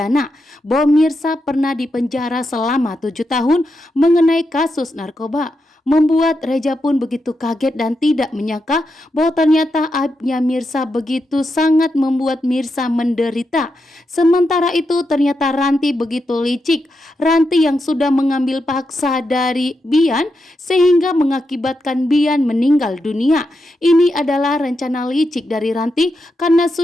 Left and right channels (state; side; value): normal; both; correlation 0.85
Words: bahwa Mirsa pernah dipenjara selama 7 tahun mengenai kasus narkoba. Membuat Reja pun begitu kaget dan tidak menyangka bahwa ternyata aibnya Mirsa begitu sangat membuat Mirsa menderita. Sementara itu ternyata Ranti begitu licik. Ranti yang sudah mengambil paksa dari Bian sehingga mengakibatkan Bian meninggal dunia. Ini adalah rencana licik dari Ranti karena